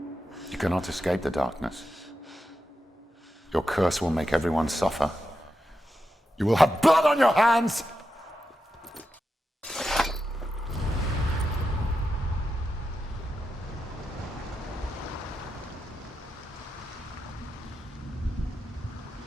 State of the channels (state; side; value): normal; both; correlation 0.88